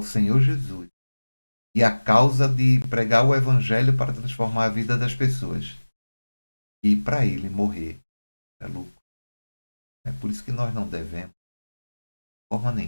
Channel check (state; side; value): inverted; both; correlation -1.00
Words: Senhor Jesus e à causa de pregar o Evangelho para transformar a vida das pessoas. E para ele morrer é lucro. É por isso que nós não devemos, de forma